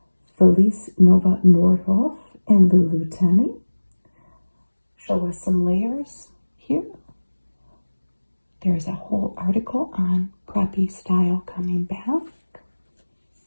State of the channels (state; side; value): inverted; both; correlation -1.00